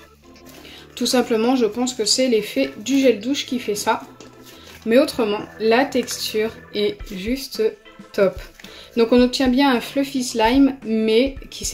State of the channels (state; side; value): identical; both; correlation 1.00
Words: Tout simplement, je pense que c'est l'effet du gel douche qui fait ça. Mais autrement, la texture est juste top. Donc on obtient bien un fluffy slime, mais qui